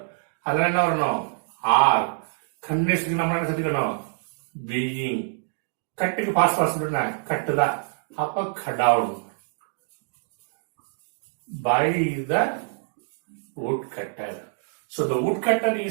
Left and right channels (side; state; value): left; silent; digital silence